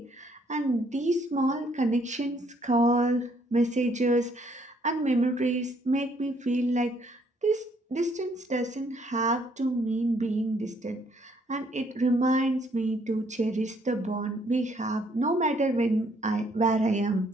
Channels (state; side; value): normal; both; correlation 0.67